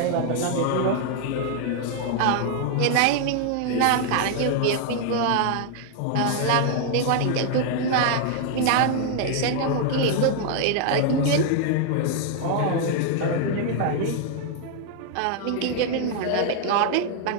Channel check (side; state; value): both; different; correlation 0.00